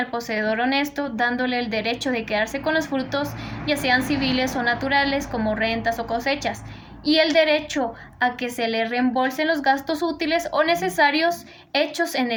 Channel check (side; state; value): both; identical; correlation 1.00